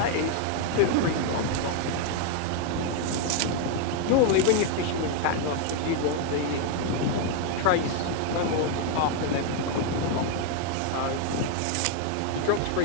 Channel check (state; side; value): different; both; correlation 0.01